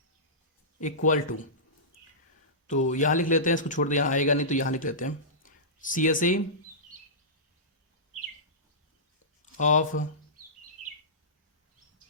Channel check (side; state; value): both; normal; correlation -0.19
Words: equal to, तो यहां लिख लेते हैं, इसको छोड़ दे, यहां आएगा नहीं तो यहां लिख लेते हैं CSA of